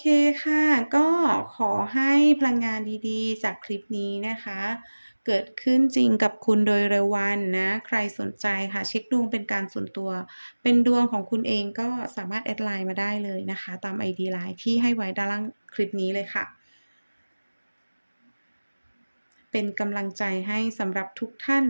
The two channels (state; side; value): inverted; both; correlation -1.00